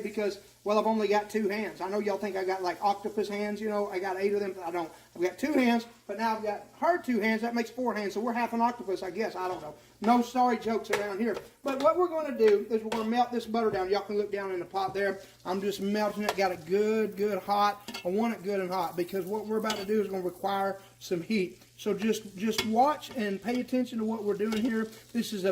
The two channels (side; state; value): both; identical; correlation 1.00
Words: well, I've only got 2 hands. I know y'all think I got like octopus hands, you know. I got 8 of them, but I don't. I've got 2 hands, but now I've got her 2 hands. That makes 4 hands, so we're half an octopus, I guess. I don't know. No sorry jokes around here. But what we're going to do is we're going to melt this butter down. Y'all can look down in the pot there. I'm just melting it. Got it good hot. I want it good and hot because what we're about to do is going to require some heat. So just watch and pay attention to what we're doing here. This is a